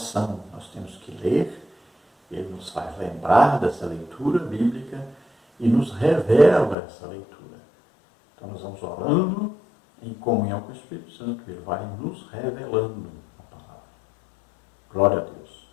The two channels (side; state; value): right; drops out; at 6.8 s